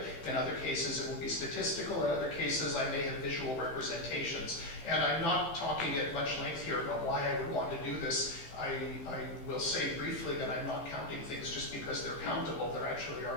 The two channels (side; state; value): right; late; 15 ms